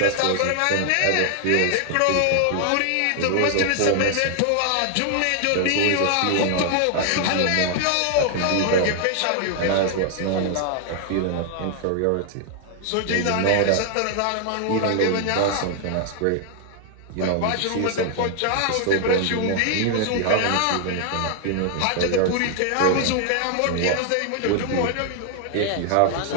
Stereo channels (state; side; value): different; both; correlation 0.00